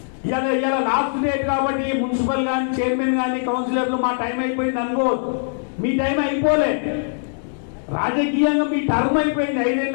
ఇలా లాస్ట్ డేట్ కాబట్టి మున్సిపల్ కానీ చైర్మన్ కానీ కౌన్సిలర్లు మా టైం అయిపోయింది అనుకోవద్దు. మీ టైం అయిపోలే. రాజకీయంగా మీ టర్మ్ అయిపోయింది, 5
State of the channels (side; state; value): right; silent; digital silence